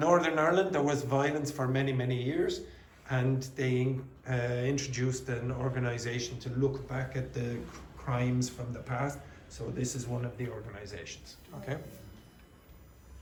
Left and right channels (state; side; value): identical; both; correlation 1.00